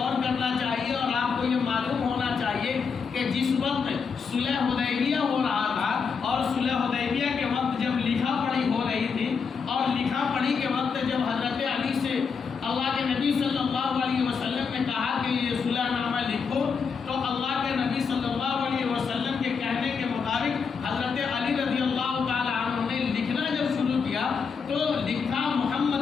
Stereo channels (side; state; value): right; quieter; 5.7 dB